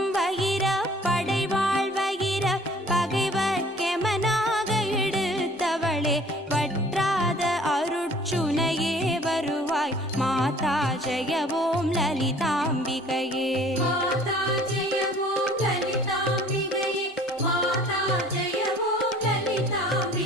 வகிர படைவாள் வகிர பகைவர் கெமனாக எடுத்தவளே, வற்றாத அருட்சுனையே வருவாய் மாதா ஜெயவோம் லலிதாம்பிகையே. மாதா ஜெயவோம் லலிதாம்பிகையே, மாதா ஜெயவோம்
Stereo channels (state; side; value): normal; both; correlation 0.52